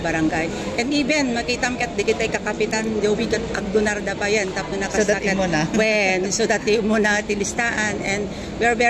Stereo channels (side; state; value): both; identical; correlation 1.00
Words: and even makita ket digitay kakapitan jowi ket agdonar da bayan tapno nakasakat when so that mo na ti listaan and we are